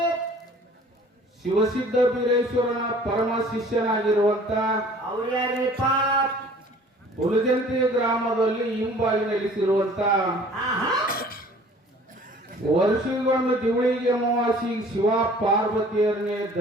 ಶಿವಸಿದ್ಧ ಬೀರೇಶ್ವರನ ಪರಮ ಶಿಷ್ಯನಾಗಿರುವಂತ ಹುಲಜಂತಿ ಗ್ರಾಮದಲ್ಲಿ ಹಿಂಬಾಗಿ ನೆಲೆಸಿರುವಂತ ವರ್ಷಗೊಂದು ದಿವಳಿಗೆ ಅಮಾವಾಸಿ ಶಿವ ಪಾರ್ವತಿಯರನ್ನೇ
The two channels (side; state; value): both; normal; correlation 0.51